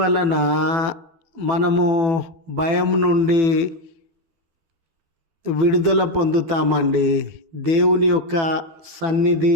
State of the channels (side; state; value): left; late; 12 ms